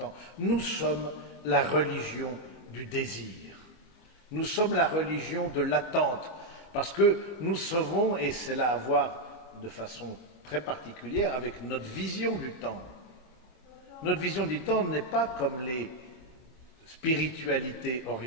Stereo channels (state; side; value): late; right; 25 ms